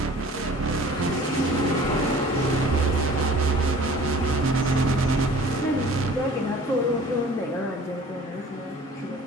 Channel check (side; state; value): both; normal; correlation 0.48